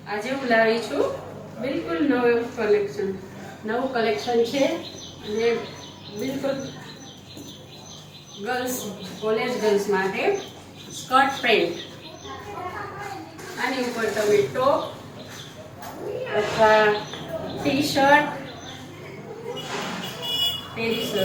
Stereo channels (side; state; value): both; identical; correlation 1.00